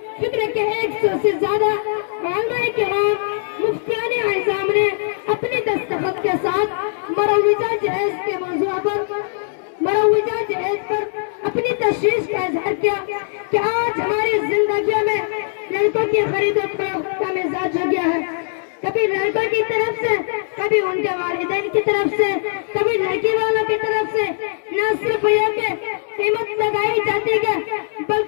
फिक्र के 100 से ज्यादा उलमाए किराम मुफ्तियान आज़म ने अपने दस्तखत के साथ मरवीजा जहेज के मौजू पर मरवीजा जहेज पर अपनी तशवीश का इजहार किया कि आज हमारी जिंदगी में लड़कों की खरीदो फरोख्त का मिजाज हो गया है। कभी लड़कों की तरफ से, कभी उनके वालिदैन की तरफ से, कभी लड़की वालों की तरफ से न सिर्फ ये कि कीमत लगाई जाती है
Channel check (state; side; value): silent; right; digital silence